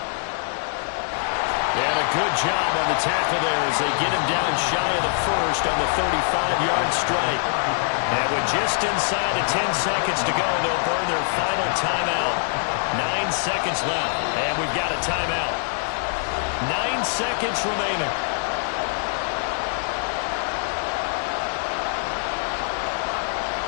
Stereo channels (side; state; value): right; silent; 63 dB below the other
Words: And a good job on the tackle there as they get him down shy of the first on the 35-yard strike. And with just inside of 10 seconds to go, they'll burn their final timeout. 9 seconds left, and we've got a timeout. 9 seconds remaining.